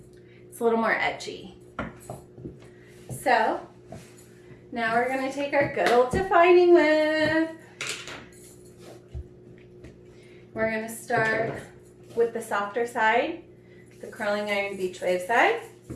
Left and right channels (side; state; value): both; identical; correlation 1.00